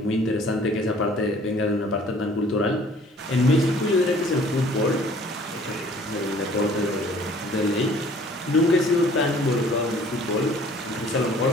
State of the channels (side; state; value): both; normal; correlation 0.54